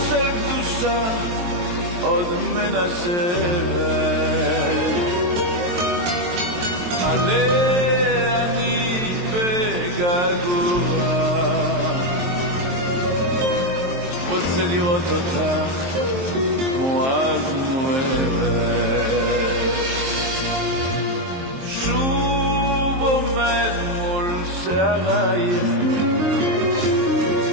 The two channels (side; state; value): left; late; 23 ms